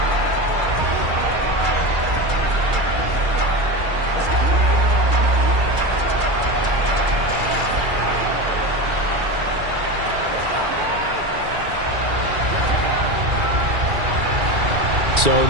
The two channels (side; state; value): left; late; 2.3 ms